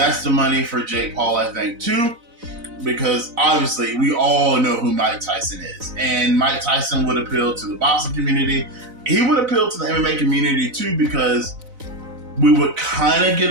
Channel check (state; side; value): late; left; 4.0 ms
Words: the money for Jake Paul, I think, too. Because obviously we all know who Mike Tyson is. And Mike Tyson would appeal to the boxing community. He would appeal to the MMA community too, because we would kind of get